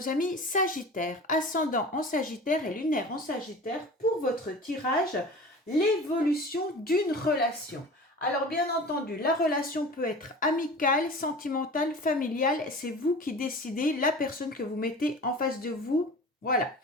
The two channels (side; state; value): both; normal; correlation 0.38